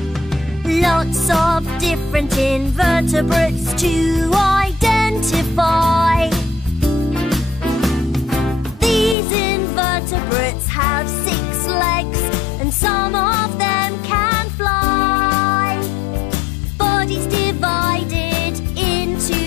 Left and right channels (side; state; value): right; drops out; at 9.2 s